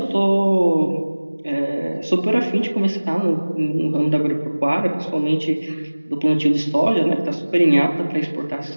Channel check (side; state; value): both; inverted; correlation -1.00